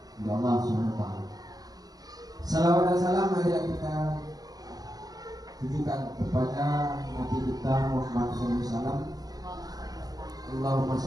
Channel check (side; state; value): left; late; 0.18 ms